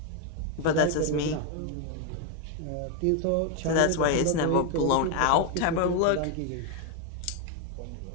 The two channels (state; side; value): different; both; correlation 0.01